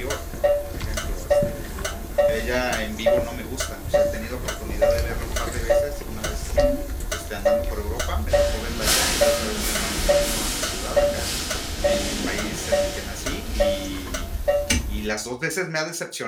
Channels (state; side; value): identical; both; correlation 1.00